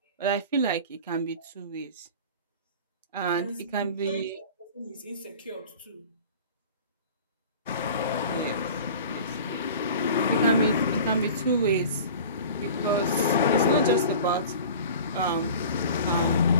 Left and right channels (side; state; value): both; inverted; correlation -0.40